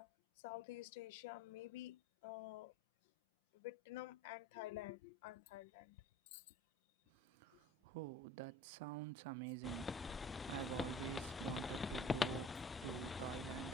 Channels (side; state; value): both; normal; correlation 0.48